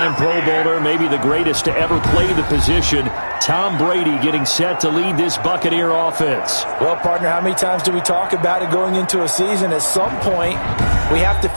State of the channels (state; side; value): inverted; both; correlation -1.00